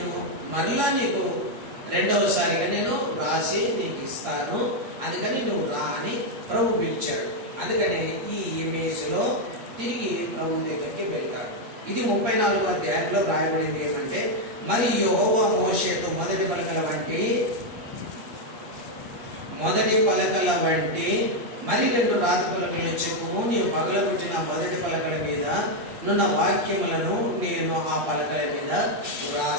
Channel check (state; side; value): late; left; 8.7 ms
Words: మరలా నీకు రెండవసారిగా నేను రాసి నీకు ఇస్తాను, అందుకని నువ్వు రా అని ప్రభు పిలిచాడు. అందుకని ఈ ఇమేజ్లో తిరిగి ప్రభు దగ్గరికి వెళ్తాడు. ఇది 34వ అధ్యాయంలో రాయబడింది ఏమంటే, మరి యెహోవా మోషేతో మొదటి పలకల వంటి మరి 2 రాతి పలకలను చెప్పుము, నీవు పగలగొట్టిన మొదటి పలకల మీద నున్న వాక్యములను నేను ఆ పలకల మీద